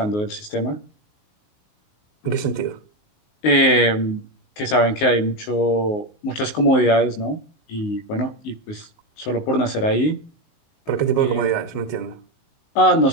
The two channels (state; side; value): late; right; 19 ms